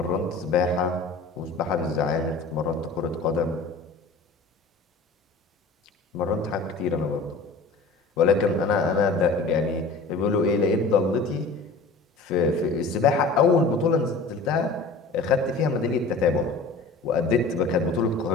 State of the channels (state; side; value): quieter; right; 3.7 dB